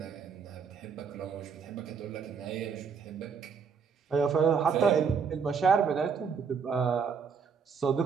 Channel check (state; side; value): quieter; left; 6.1 dB